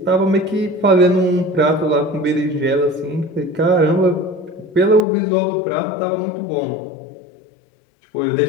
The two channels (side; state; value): right; drops out; at 5.0 s